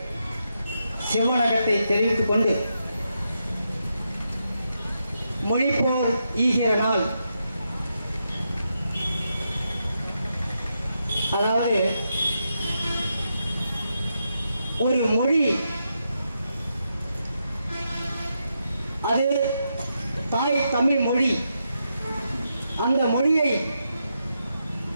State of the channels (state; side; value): inverted; both; correlation -0.83